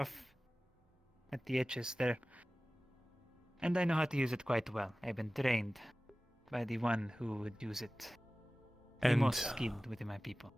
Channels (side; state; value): both; normal; correlation 0.97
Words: at the edges there, and I know how to use it quite well. I've been trained by the one who would use it, the most skilled within my people.